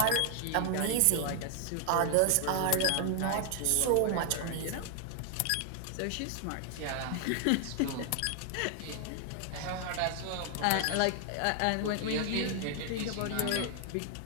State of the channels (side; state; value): both; different; correlation 0.00